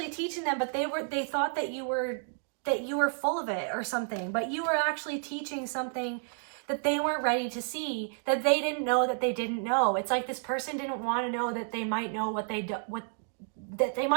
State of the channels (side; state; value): left; silent; 57 dB below the other